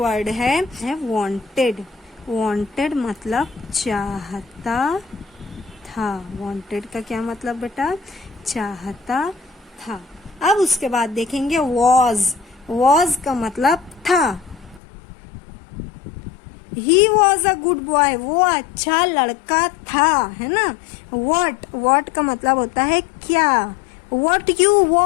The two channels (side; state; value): right; drops out; at 14.8 s